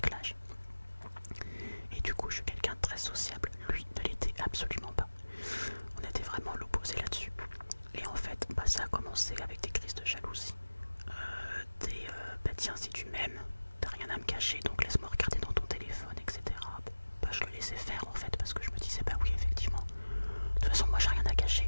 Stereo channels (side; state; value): both; inverted; correlation -1.00